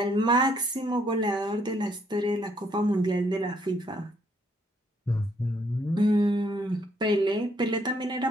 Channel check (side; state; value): both; normal; correlation 0.70